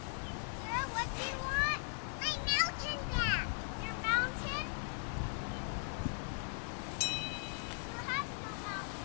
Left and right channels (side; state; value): right; silent; 52 dB below the other